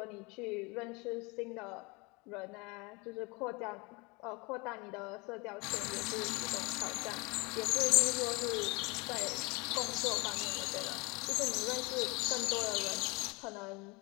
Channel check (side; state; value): right; quieter; 27.3 dB